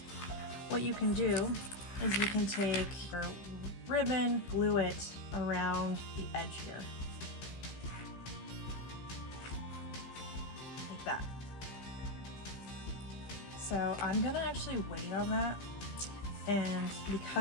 what you can do is you can take your ribbon, glue it around the edge here. Like that. So I'm gonna actually wait on that, and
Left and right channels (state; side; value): late; right; 15 ms